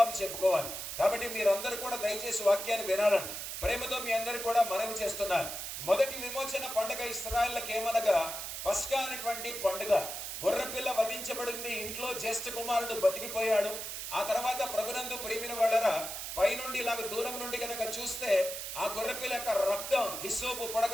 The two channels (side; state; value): right; noise; hiss, 6 dB below the sound